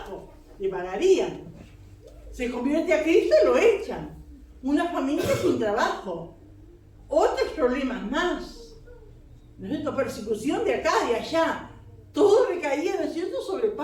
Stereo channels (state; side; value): identical; both; correlation 1.00